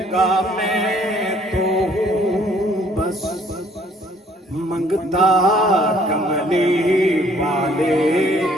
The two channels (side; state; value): both; normal; correlation 0.60